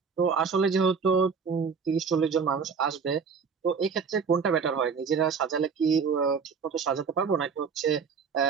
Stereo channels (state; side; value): quieter; left; 5.8 dB